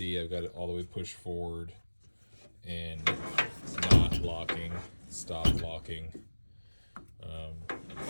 I've got it all the way pushed forward and it's not locking, stop locking.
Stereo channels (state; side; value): inverted; both; correlation -1.00